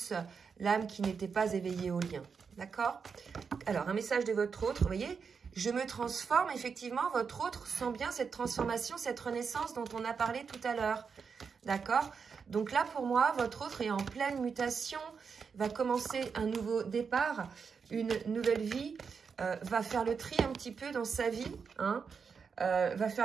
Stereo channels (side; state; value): left; quieter; 5.8 dB